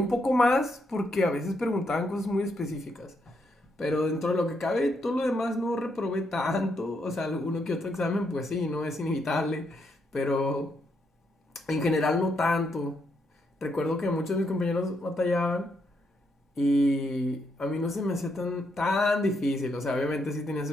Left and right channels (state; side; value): normal; both; correlation 0.78